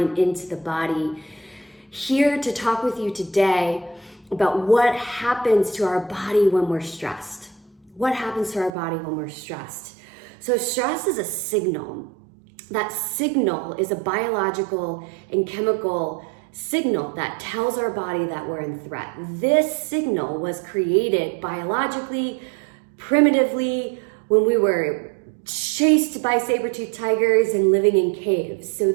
into the body. Here to talk with you today about what happens to our body when we're stressed. What happens to our body when we're stressed? So stress is a signal. That signal is a biological and chemical signal that tells our body that we're in threat. This signal was created biologically, primitively, when we were chased by saber-toothed tigers and living in caves. So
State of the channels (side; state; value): left; drops out; at 8.7 s